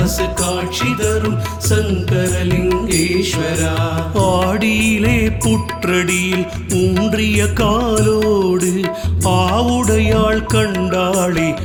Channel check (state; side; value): identical; both; correlation 1.00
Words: காட்சி தரும் சங்கரலிங்கேஸ்வரா ஆடியிலே புற்றடியில் ஊன்றிய காலோடு ஆவுடையாள் கண்டாளே